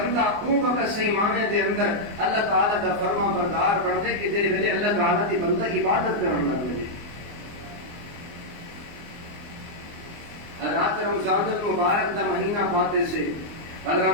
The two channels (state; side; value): late; left; 24 ms